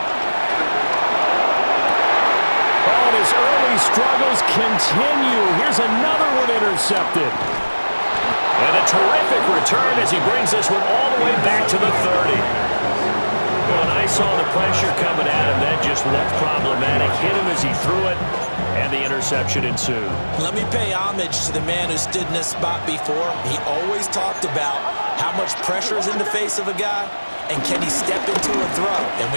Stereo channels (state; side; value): inverted; both; correlation -1.00